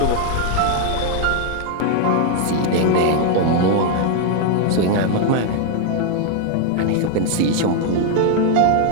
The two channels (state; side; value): different; both; correlation 0.00